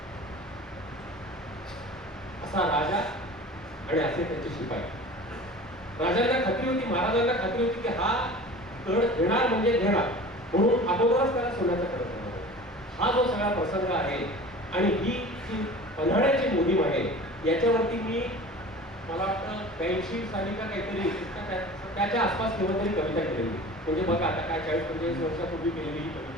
असा राजा आणि असे त्याचे शिपाई. राजांना खात्री होती, महाराजांना खात्री होती की हा कड घेणार म्हणजे घेणार, म्हणून अगोदरच त्याला सोन्याचा कड चढवला. हा जो सगळा प्रसंग आहे आणि ही जी पन्हाळ्याची मोहीम आहे याच्यावरती मला वाटतं 82 साली का काहीतरी त्याच्या आसपास केव्हा तरी कविता केलेली. म्हणजे बघा आता काय 40-45 वर्षापूर्वी केलेली ही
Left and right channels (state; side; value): normal; both; correlation 0.39